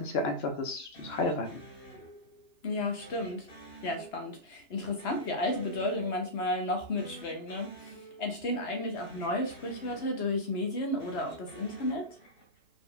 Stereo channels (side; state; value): right; late; 2.9 ms